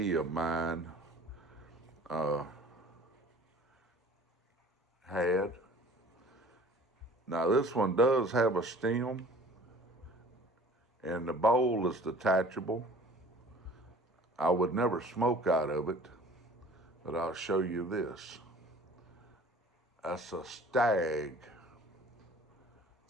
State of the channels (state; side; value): normal; both; correlation 0.47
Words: of mine had. Now this one does have a stem, and the bowl is detachable. I would never smoke out of it, but I'll show you this. That's a stag.